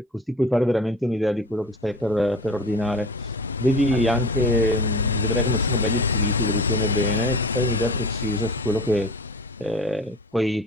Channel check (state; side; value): normal; both; correlation 0.38